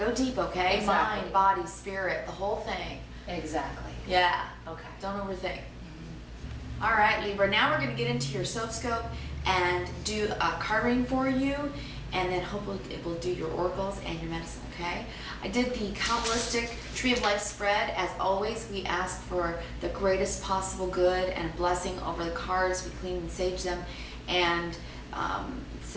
deep, okay? Exactly. Mind, body, spirit, the whole thing. Exactly. Yeah. Okay. Don't overthink. All right, Libra. Now we're going to get into your Sophscope and do a card reading for you, and then hopefully it will do your oracles and your medicine, okay? I did the Kabbalistic Tree of Life spread. As always, we ask for the greatest possible good and a blessing over the cards. We clean and sage them, and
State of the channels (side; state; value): both; identical; correlation 1.00